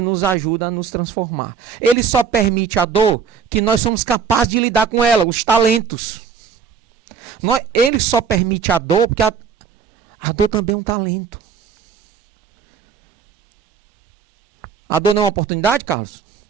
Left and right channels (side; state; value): left; quieter; 6.6 dB